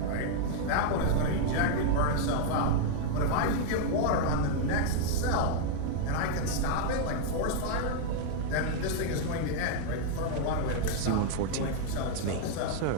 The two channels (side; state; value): both; different; correlation 0.00